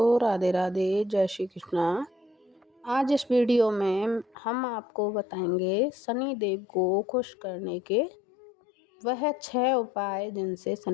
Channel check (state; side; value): drops out; right; at 4.4 s